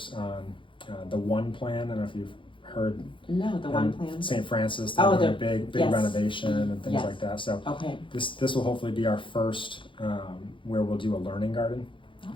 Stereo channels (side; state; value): right; late; 0.25 ms